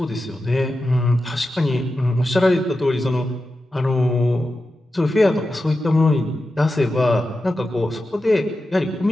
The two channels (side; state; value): both; normal; correlation 0.91